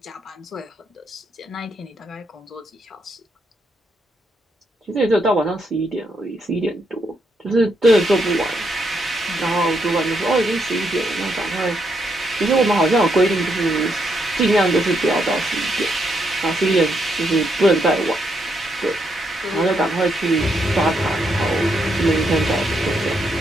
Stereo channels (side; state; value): both; normal; correlation 0.78